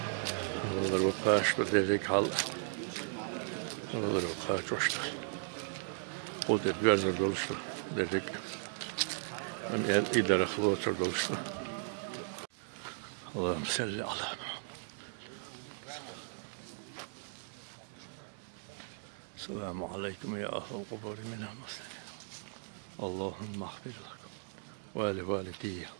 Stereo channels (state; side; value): silent; left; digital silence